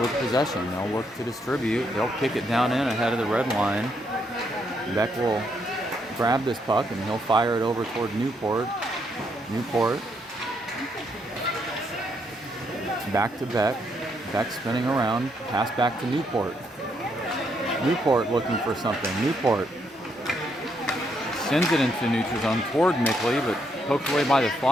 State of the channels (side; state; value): both; normal; correlation 0.75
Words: possession. They'll work to distribute. They'll kick it down in ahead of the red line. Beck will grab this puck and he'll fire it over toward Newport. Newport. Back to Beck. Beck spinning around. Pass back to Newport. Newport looking for something. Newport sends it into neutral zone toward Mickley, but poked away by the